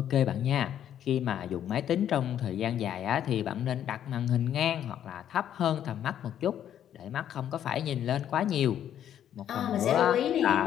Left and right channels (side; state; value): right; quieter; 10.2 dB